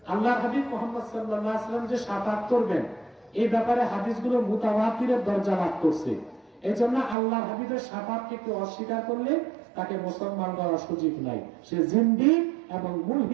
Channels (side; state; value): left; drops out; at 7.2 s